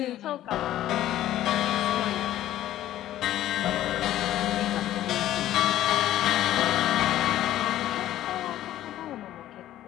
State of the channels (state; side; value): quieter; right; 13.4 dB